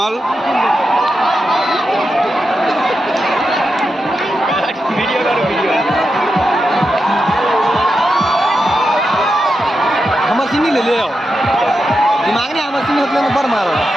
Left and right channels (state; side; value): normal; both; correlation 0.88